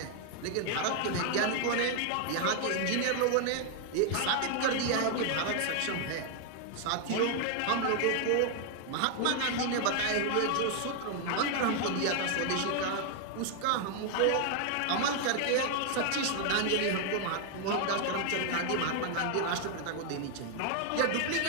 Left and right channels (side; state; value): both; different; correlation 0.00